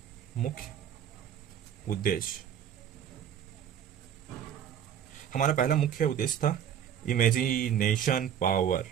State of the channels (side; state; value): left; quieter; 9.2 dB